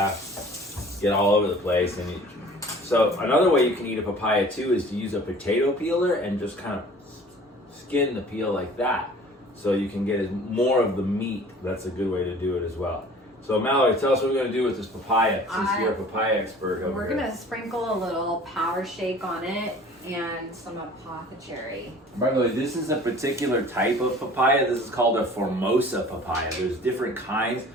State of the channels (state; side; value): normal; both; correlation 0.47